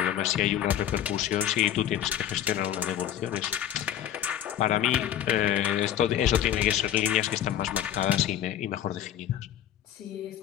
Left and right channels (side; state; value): right; quieter; 10.9 dB